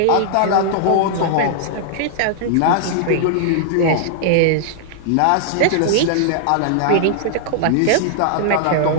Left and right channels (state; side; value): different; both; correlation -0.01